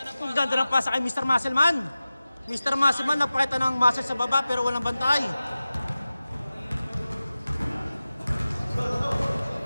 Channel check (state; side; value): inverted; both; correlation -0.96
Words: Ang ganda ng pasa kay Mr. Muscleman. Mr. Muscleman, napakita ng muscle sa baba pero walang bantay.